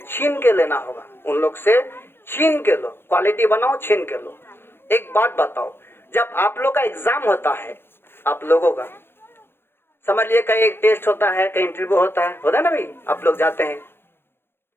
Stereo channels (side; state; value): right; late; 0.11 ms